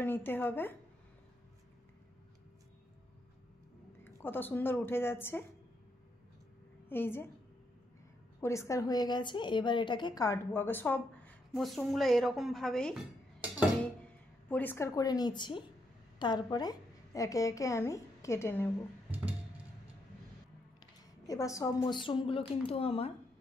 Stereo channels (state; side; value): normal; both; correlation 0.78